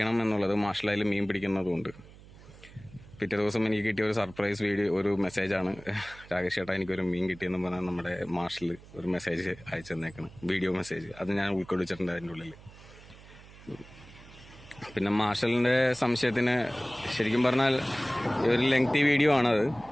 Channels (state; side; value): noise; right; hum, 20 dB below the sound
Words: എന്നുള്ളത്. മാർഷൽ അതിൽ മീൻ പിടിക്കുന്നതുകൊണ്ട് പിറ്റേ ദിവസം എനിക്ക് കിട്ടിയ ഒരു സർപ്രൈസ് വീഡിയോ, ഒരു മെസ്സേജാണ്. രാകേഷ് ചേട്ടാ എനിക്കൊരു മീൻ കിട്ടിയെന്ന് പറഞ്ഞാൽ നമ്മുടെ മാർഷൽ ഒരു മെസ്സേജ് അയച്ചു തന്നേക്കണം, വീഡിയോ മെസ്സേജ്. അത് ഞാൻ ഉൾക്കൊള്ളിച്ചിട്ടുണ്ട് അതിൻ്റെ ഉള്ളിൽ. പിന്നെ മാർഷലിൻ്റെ സംശയത്തിന് ശരിക്കും പറഞ്ഞാൽ ഒരു ലെങ്തി വീഡിയോ ആണത്.